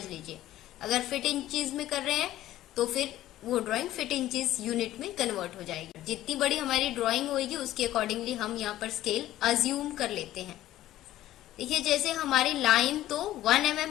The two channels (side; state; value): right; quieter; 14.2 dB